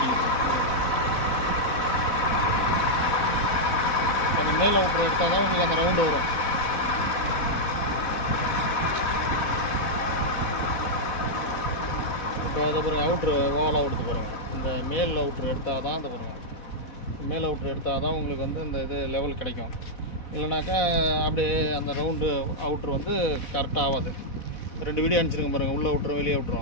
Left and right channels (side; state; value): right; late; 4.1 ms